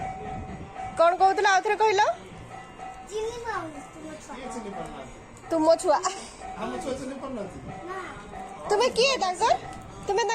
कौन कहूल आउ थे कहल तुम छुआ तुम्हें किए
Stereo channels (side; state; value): both; identical; correlation 1.00